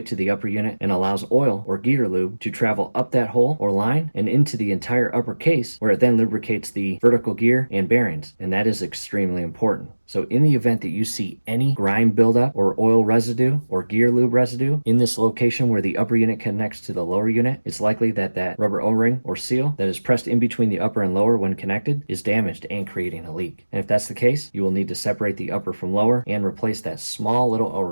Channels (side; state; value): both; inverted; correlation -1.00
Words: to the upper unit and allows oil or gear lube to travel up that hole or line and into the entire upper case, where it then lubricates the vertical gear and bearings. And that is extremely important. So in the event that you see any grime buildup or oil residue or gear lube residue in this location where the upper unit connects to the lower unit, it's likely that that rubber O-ring or seal that is pressed in between the upper and lower when connected is damaged and creating a leak. And if that's the case, you will need to separate the upper from lower and replace that small little